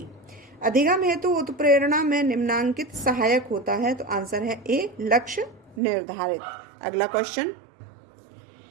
अधिगम हेतु उत्प्रेरणा में निम्नांकित सहायक होता है, तो आंसर है ए, लक्ष्य निर्धारित। अगला क्वेश्चन,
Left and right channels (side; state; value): left; drops out; at 5.8 s